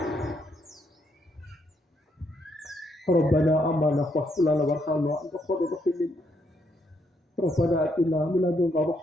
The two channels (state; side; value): normal; both; correlation 0.75